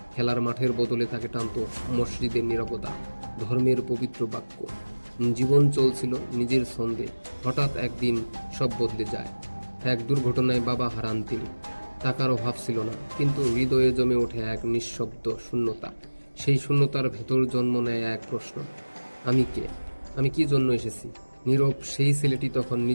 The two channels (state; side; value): inverted; both; correlation -1.00